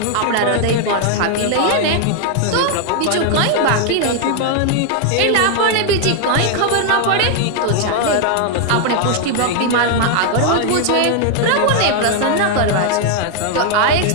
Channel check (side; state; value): both; different; correlation 0.00